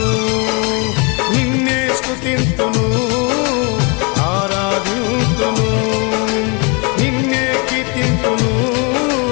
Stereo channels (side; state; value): right; quieter; 31.7 dB